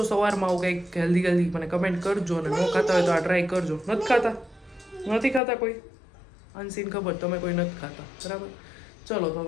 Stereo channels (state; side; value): drops out; right; at 5.4 s